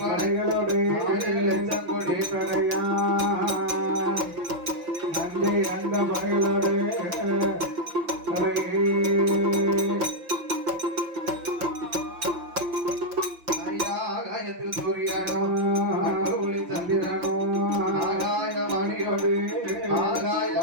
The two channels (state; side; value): late; left; 5.8 ms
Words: கொடி படையா நஞ்சை அந்த படைகளோடு ஆகாயத்தில் சூரியனோ ஒளி சந்திரனோ ஆகாய வாணியோடு ஆகாய